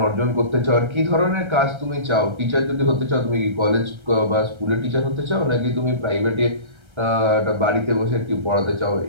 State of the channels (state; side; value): late; left; 1.3 ms